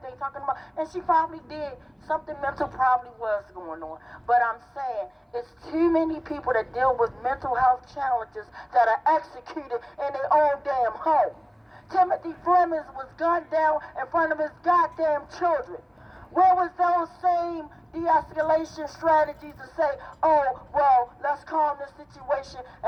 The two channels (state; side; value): identical; both; correlation 1.00